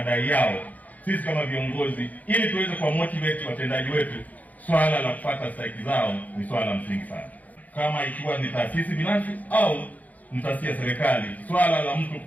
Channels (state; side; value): late; right; 0.078 ms